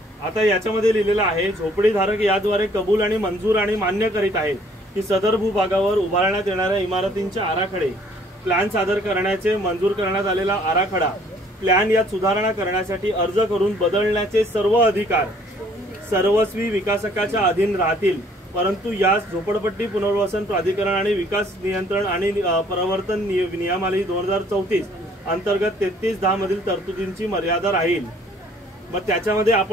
आता याच्यामध्ये लिहिलेलं आहे झोपडीधारक याद्वारे कबूल आणि मंजूर आणि मान्य करीत आहेत की सदर भूभागावर उभारण्यात येणाऱ्या इमारतींचे आराखडे प्लॅन सादर करण्याचे मंजूर करण्यात आलेला आराखडा प्लॅन यात सुधारणा करण्यासाठी अर्ज करून बदलण्याचे सर्व अधिकार सर्वस्वी विकासकाच्या अधीन राहतील. परंतु यास झोपडपट्टी पुनर्वसन प्राधिकरण आणि विकास नियंत्रण आणि प्रवर्तन नियमावली 2034 अंतर्गत 3310 मधील तरतुदींची मर्यादा राहील. मग त्याच्यामध्ये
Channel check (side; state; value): both; normal; correlation 0.60